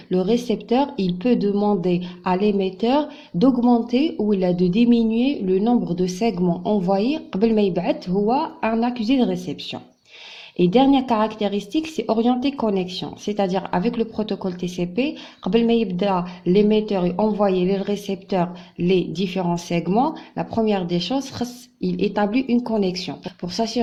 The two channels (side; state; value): both; identical; correlation 1.00